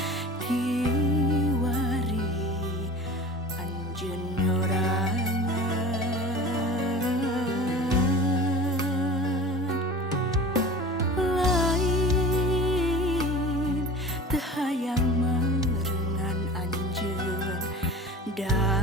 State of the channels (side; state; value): both; normal; correlation 0.37